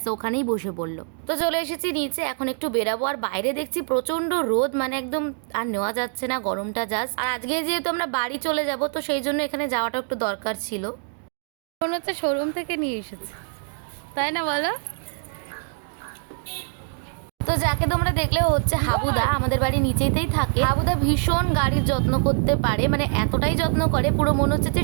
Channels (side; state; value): left; silent; 59 dB below the other